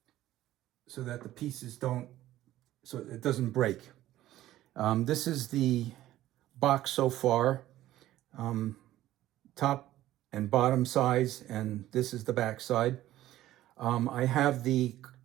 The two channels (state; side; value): quieter; left; 14.4 dB